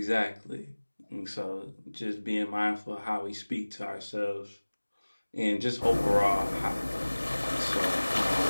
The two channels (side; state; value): both; inverted; correlation -1.00